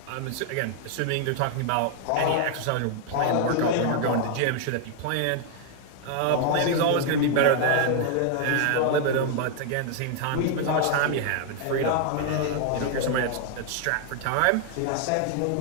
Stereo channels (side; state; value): both; different; correlation 0.00